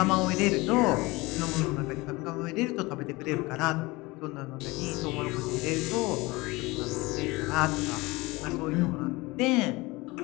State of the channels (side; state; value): right; quieter; 22.6 dB